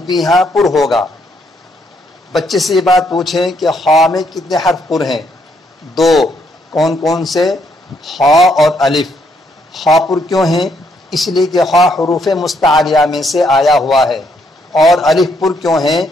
بھی یہاں پر ہوگا. بچے سے یہ بات پوچھیں کہ خا میں کتنے حرف پر ہیں؟ دو کون کون سے؟ خا اور الف۔ خا پر کیوں ہیں؟ اس لیے کہ خا حروف مستعلیہ میں سے آیا ہوا ہے، اور الف پر کیوں ہیں؟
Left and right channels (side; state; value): both; normal; correlation 0.73